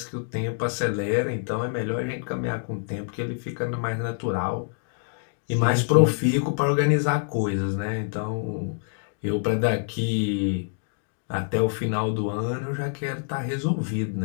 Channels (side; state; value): right; silent; digital silence